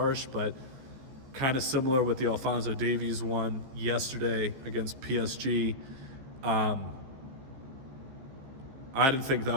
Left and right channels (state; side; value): late; left; 15 ms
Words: but kind of similar with the Alphonso Davies one yesterday against PSG. I didn't think that